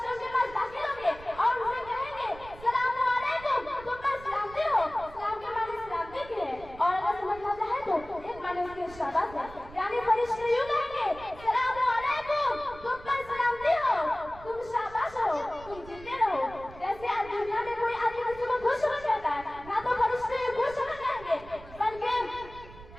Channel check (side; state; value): right; noise; rumble, 18 dB below the sound